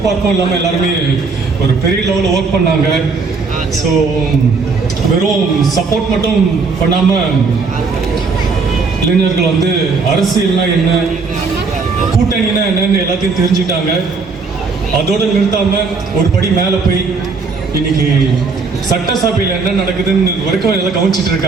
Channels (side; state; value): left; quieter; 4.5 dB